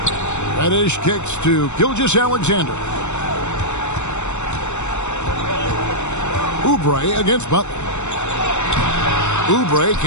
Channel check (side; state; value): right; late; 0.83 ms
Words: Reddish kicks to Gilgeous-Alexander. Oubre against Butler. Oubre